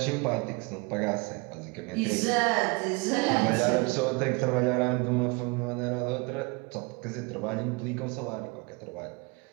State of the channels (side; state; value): left; quieter; 28.7 dB